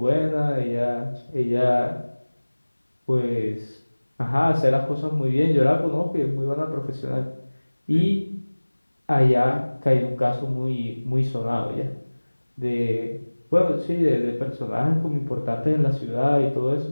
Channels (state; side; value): inverted; both; correlation -1.00